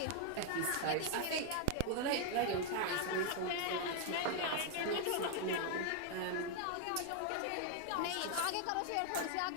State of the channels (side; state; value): both; different; correlation 0.00